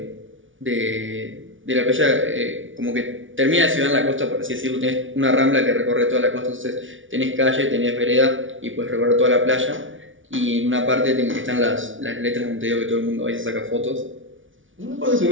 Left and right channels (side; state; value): left; late; 0.57 ms